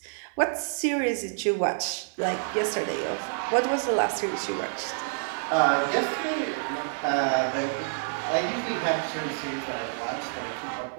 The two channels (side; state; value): left; silent; 59 dB below the other